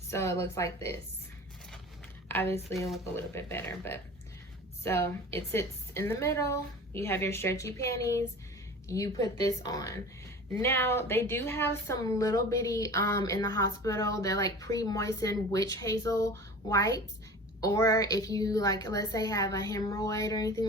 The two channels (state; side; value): normal; both; correlation 0.38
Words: it looks like this. Obviously it'll look a little bit better, but so it sits in the middle. You have your stretchy panties. You put this on. Now they do have some little bitty in the hospital. They're like pre-moistened witch hazel wipes. Or if you let's say have a hemorrhoid or